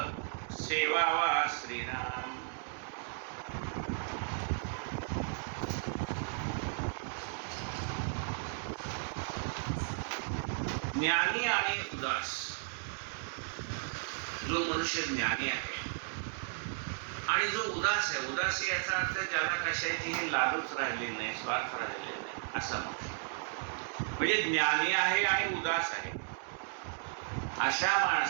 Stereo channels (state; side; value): silent; left; 55 dB below the other